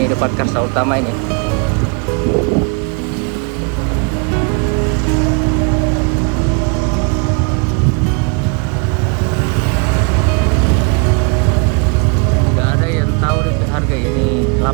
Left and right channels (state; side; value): quieter; left; 34.7 dB